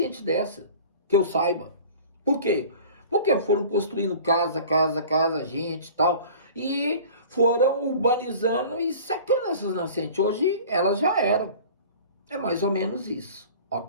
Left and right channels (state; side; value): inverted; both; correlation -0.42